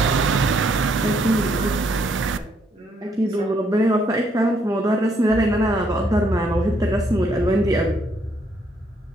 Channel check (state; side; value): normal; both; correlation 0.71